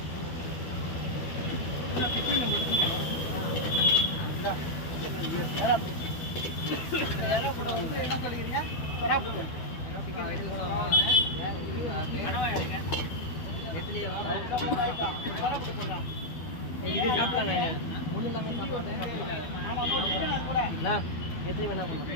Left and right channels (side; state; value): right; late; 12 ms